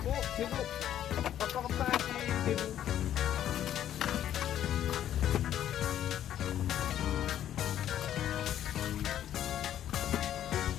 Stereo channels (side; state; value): right; quieter; 11.1 dB